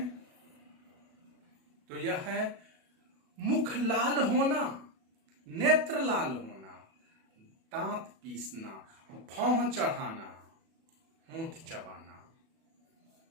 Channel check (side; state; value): left; late; 36 ms